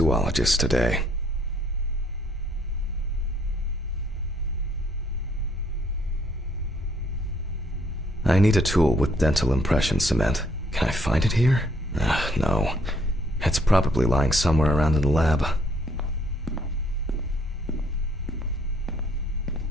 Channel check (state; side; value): normal; both; correlation 0.67